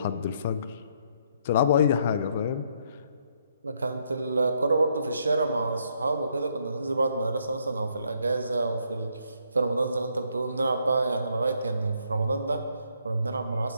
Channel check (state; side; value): inverted; both; correlation -0.71